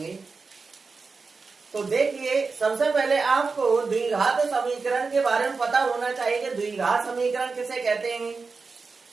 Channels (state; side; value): quieter; left; 4.5 dB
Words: तो देखिए, सबसे पहले आपको द्विघात समीकरण के बारे में पता होना चाहिए कि द्विघात समीकरण किसे कहते हैं,